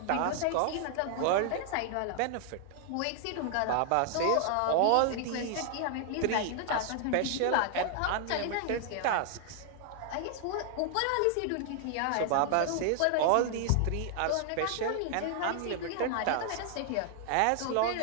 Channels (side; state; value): both; different; correlation 0.00